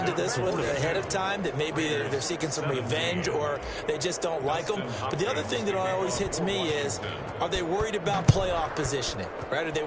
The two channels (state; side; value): identical; both; correlation 1.00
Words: this one ahead of time, that maybe they're seeking some revenge or they just don't like them? But the other thing that always hits me is, are they worried about playoff positioning, right? Are they